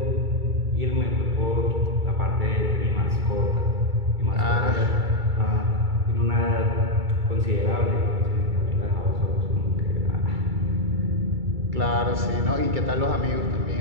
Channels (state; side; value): late; left; 2.3 ms